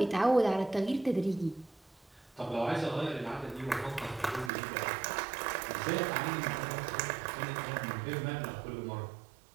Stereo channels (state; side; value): drops out; left; at 4.5 s